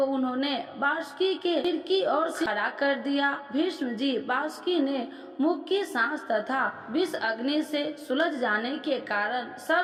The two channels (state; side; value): identical; both; correlation 1.00